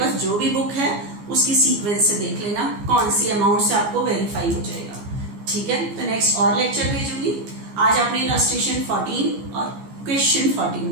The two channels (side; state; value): left; late; 14 ms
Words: जो भी बुक है उसकी सीक्वेंस से देख लेना कौन सी अमाउंट से आपको वेरीफाई हो जाएगा। ठीक है, तो नेक्स्ट और लेक्चर भेजूंगी। आज आपने इलस्ट्रेशन 14 और क्वेश्चन